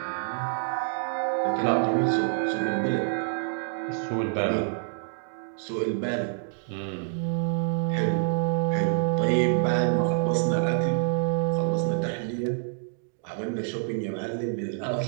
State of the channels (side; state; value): left; silent; digital silence